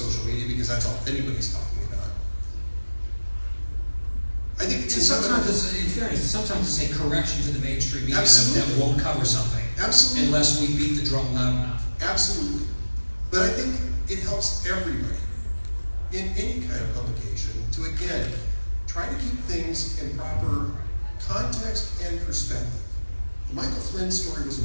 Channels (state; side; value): inverted; both; correlation -1.00